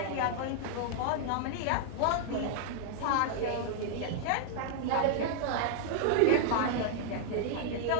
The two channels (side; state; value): both; different; correlation -0.01